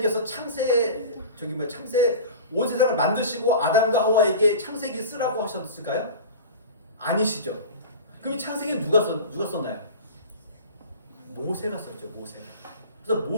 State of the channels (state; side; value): inverted; both; correlation -0.34